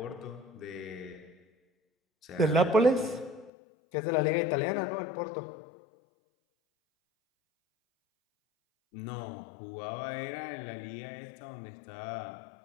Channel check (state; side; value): drops out; right; at 3.5 s